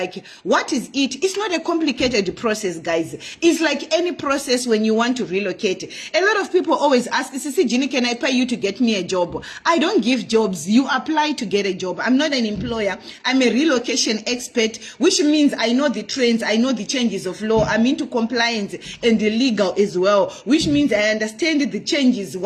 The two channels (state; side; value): identical; both; correlation 1.00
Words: what is it? It's not a complicated process, guys. It's like any process when you want to relocate. A lot of people always ask, Sisi Ginny, can I pay you to get me a job? I don't give jobs. You apply to get a job. I'm not an employer. I'm a relocation expert, which means I know the trends, I know the changes of law, I'm into compliance and the legal as well, which means I understand the changes,